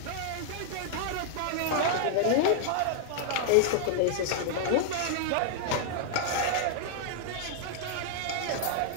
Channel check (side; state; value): both; different; correlation -0.01